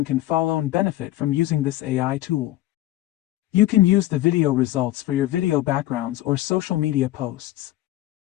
can follow and benefit from using this AI tool. You can use the video results for your video backgrounds or social media posts.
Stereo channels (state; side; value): quieter; right; 15.5 dB